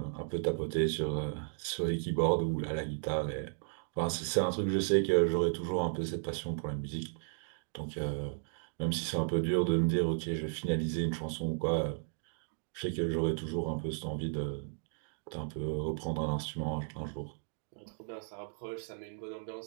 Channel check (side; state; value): left; silent; digital silence